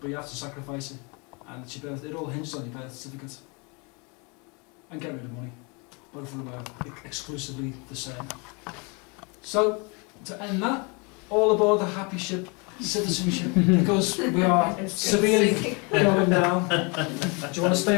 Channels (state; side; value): quieter; right; 31.4 dB